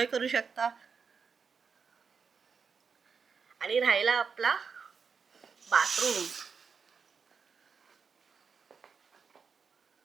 करू शकता. आणि राहिला आपला बाथरूम.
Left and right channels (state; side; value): quieter; left; 5.7 dB